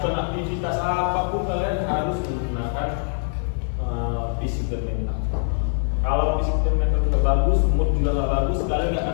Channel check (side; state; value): right; silent; 63 dB below the other